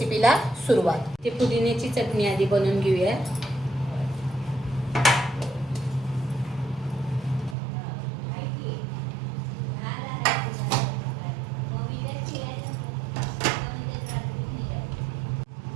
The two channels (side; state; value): left; drops out; at 7.6 s